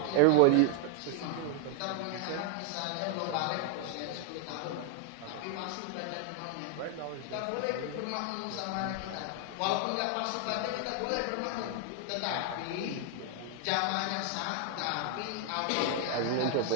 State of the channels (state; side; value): different; both; correlation 0.00